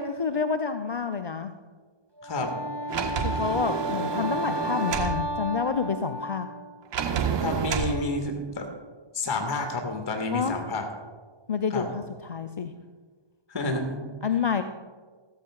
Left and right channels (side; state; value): left; late; 1.2 ms